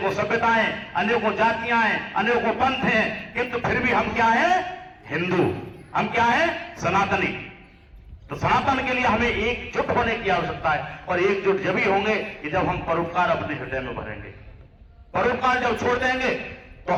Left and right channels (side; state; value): both; identical; correlation 1.00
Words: सभ्यताएं, अनेकों जातियां हैं, अनेकों पंथ हैं, किंतु फिर भी हम क्या हैं? हिंदू। हम क्या हैं? सनातनी। तो सनातन के लिए हमें एकजुट होने की आवश्यकता है, और एकजुट जब ही होंगे कि जब हम परोपकार अपने हृदय में भरेंगे। परोपकार जब छोड़ देंगे तो